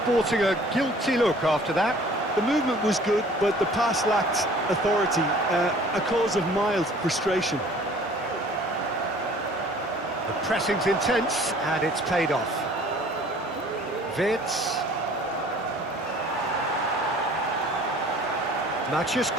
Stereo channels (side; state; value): both; normal; correlation 0.51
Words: a guilty look after that. The movement was good, but the pass lacked authority, a cause of mild frustration. The pressing's intense, and it's paid off. Wirtz. Matheus